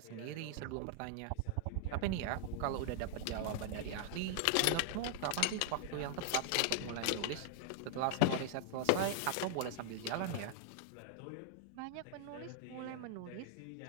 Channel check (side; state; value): both; different; correlation -0.01